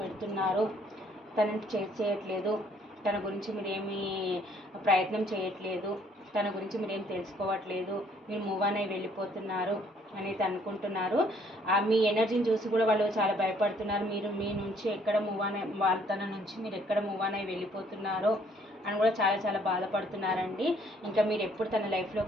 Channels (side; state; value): both; normal; correlation 0.63